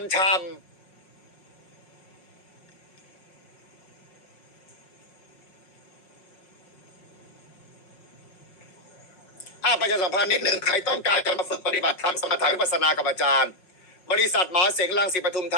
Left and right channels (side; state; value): right; late; 5.4 ms